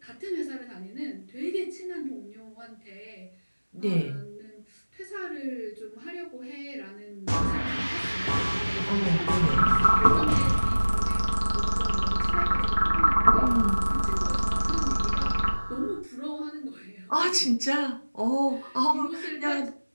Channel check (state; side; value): inverted; both; correlation -1.00